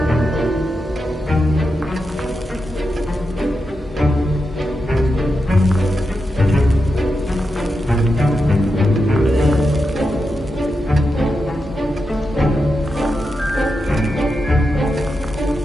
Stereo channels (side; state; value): both; normal; correlation 0.87